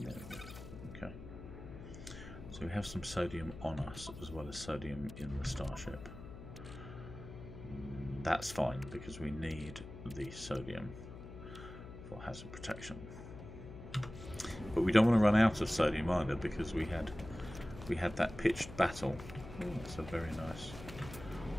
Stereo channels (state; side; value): noise; left; hum, 13 dB below the sound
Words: go. Okay. So we have some sodium on us as well as sodium in the Starship. That's fine because we need the sodium for hazard protection. But we don't want to run out of sodium either because we had that pitched battle. Ooh, that's a very nice.